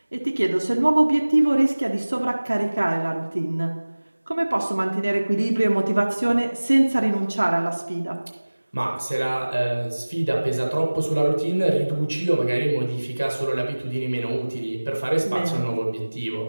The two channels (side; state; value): both; inverted; correlation -1.00